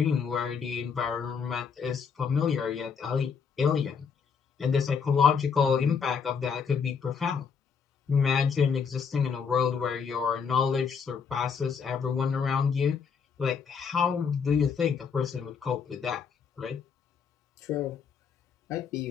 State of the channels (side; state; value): right; quieter; 6.2 dB